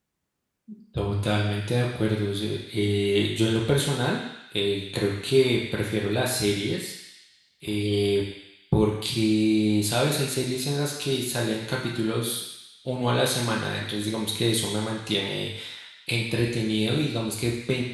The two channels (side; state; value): both; identical; correlation 1.00